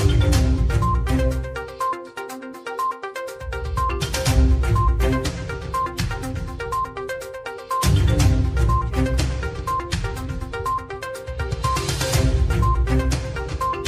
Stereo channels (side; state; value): both; identical; correlation 1.00